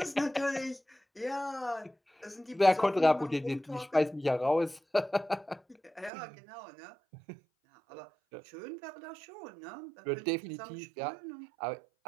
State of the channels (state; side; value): drops out; left; at 6.1 s